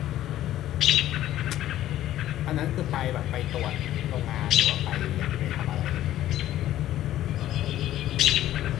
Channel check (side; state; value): right; quieter; 13.2 dB